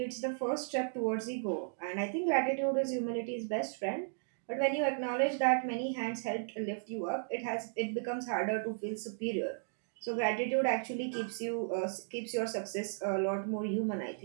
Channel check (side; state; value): left; silent; digital silence